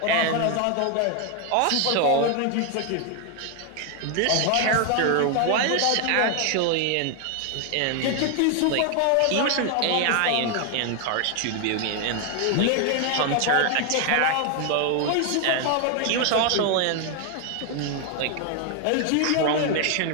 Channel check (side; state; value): both; different; correlation 0.00